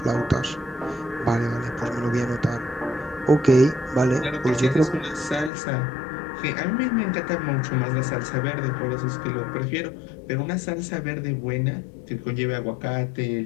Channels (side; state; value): right; drops out; at 5.5 s